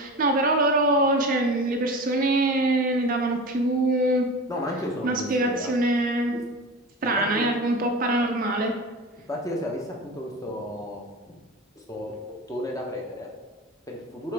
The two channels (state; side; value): normal; both; correlation 0.31